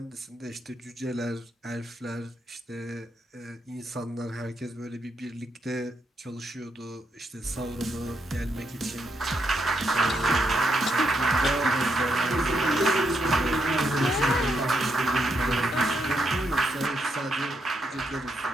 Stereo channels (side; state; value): both; normal; correlation 0.79